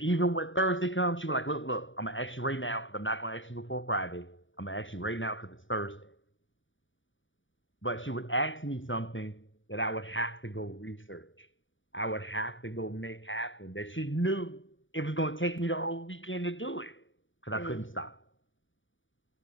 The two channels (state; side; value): late; right; 0.56 ms